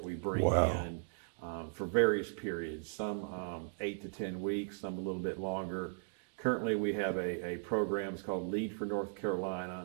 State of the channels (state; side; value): silent; left; digital silence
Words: we bring in for various periods, some 8 to 10 weeks, some a little bit longer. Currently, we have a program, it's called Lead for North